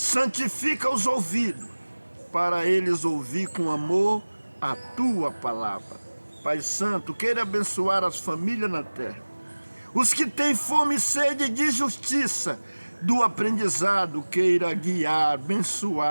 os ouvidos, para eles ouvir com amor a tua palavra. Pai Santo, queira abençoar as famílias na terra, os que têm fome e sede de justiça, do aprendizado, queira guiar,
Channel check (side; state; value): both; inverted; correlation -1.00